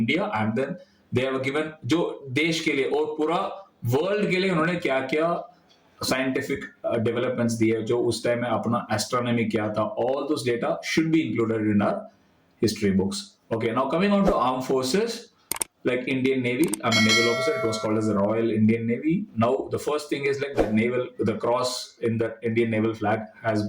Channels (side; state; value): both; identical; correlation 1.00